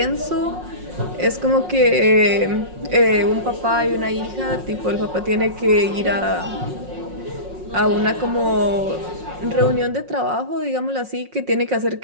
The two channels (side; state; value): left; late; 5.5 ms